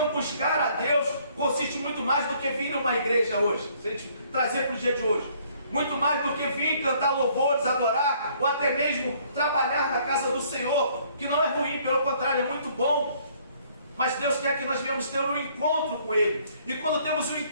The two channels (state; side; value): inverted; both; correlation -0.62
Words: buscar a Deus consiste muito mais do que vir numa igreja hoje, se a gente trazer para o dia de hoje, muito mais do que vir cantar louvores, adorar, ou até mesmo trabalhar na casa do Senhor, que não é ruim, pelo contrário, é muito bom. Mas Deus quer que nós venhamos ter um encontro com Ele. E quando temos um